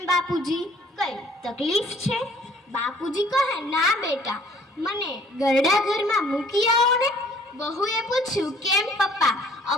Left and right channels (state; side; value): normal; both; correlation 0.57